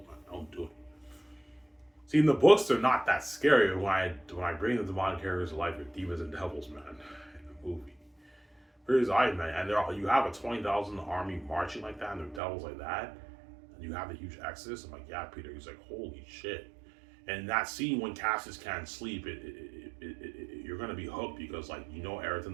man. Don't do it. See, in the books, they're not that scary. When I bring the demonic characters to life, they're demons and devils, man. In the movie, here's I, man, and you have a 20,000 army marching like that, and they're devils like that, and you have the huge exodus. I'm like, yeah, Peter. He's like, holy shit. And that scene when Cassius can't sleep, you're gonna be hooked because like Eric the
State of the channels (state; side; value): drops out; left; at 12.4 s